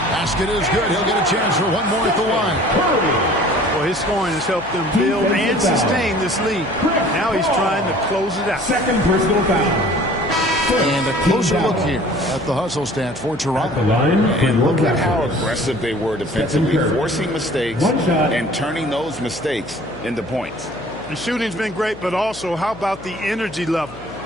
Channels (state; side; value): noise; left; hum, 18 dB below the sound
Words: Basket is good. He'll get a chance for one more at the line. Well, his scoring has helped them build and sustain this lead. Now he's trying to close it out. Second personal foul. And a closer look here at the hustle stats for Toronto. And look at how aggressive they were defensively, forcing mistakes and turning those mistakes into points. The shooting's been great, but also how about the energy level?